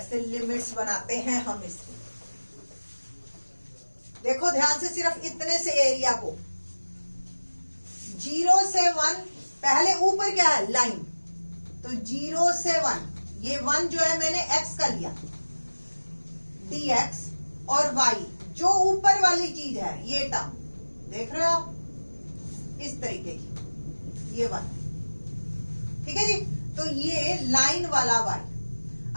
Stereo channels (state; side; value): inverted; both; correlation -1.00